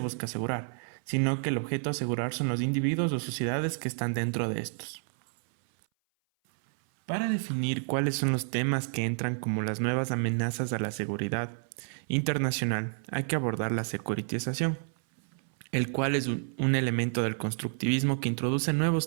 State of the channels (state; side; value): silent; left; 57 dB below the other